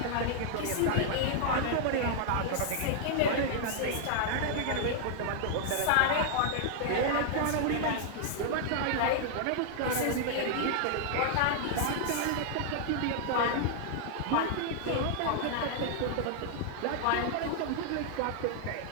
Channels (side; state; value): both; different; correlation -0.01